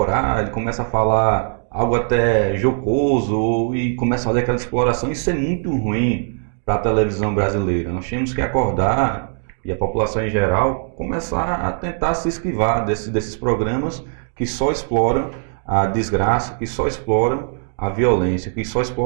ele começa a falar algo até jocoso e começa a fazer aquela exploração. Isso é muito ruim. para a televisão brasileira. Nós temos que acordar, e a população em geral, começar a tentar se esquivar desses programas que só exploram a desgraça, que só exploram a violência, que só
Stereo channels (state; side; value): silent; left; 66 dB below the other